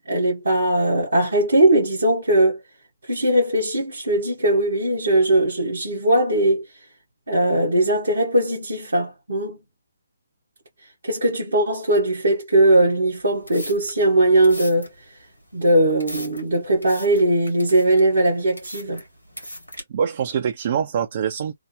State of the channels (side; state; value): both; inverted; correlation -0.65